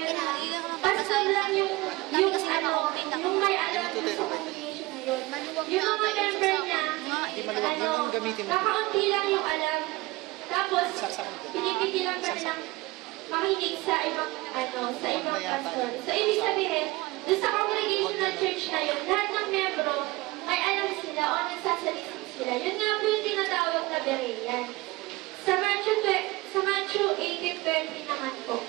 na pastor lang yung may alam sa congregation na yun. Yung mga member niya, kakaunti lang yung alam. Tapos, pinipigilan ka nilang makinig sa ibang pastor. So, ibig sabihin, doon sa congregational church na yun, lahat ng membro, may alam sila o nagsasalisin sila. Yun nga po yung tinatawag na Berean. Sa Matthew 18:20 naman po.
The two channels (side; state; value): left; quieter; 21.4 dB